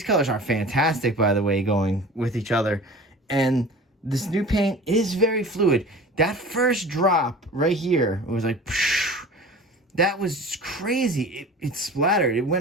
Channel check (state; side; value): normal; both; correlation 0.40